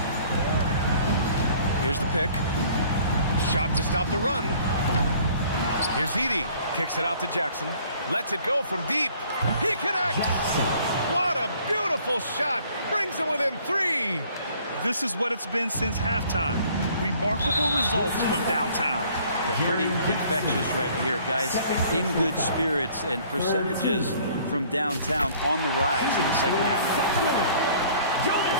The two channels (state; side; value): inverted; both; correlation -0.56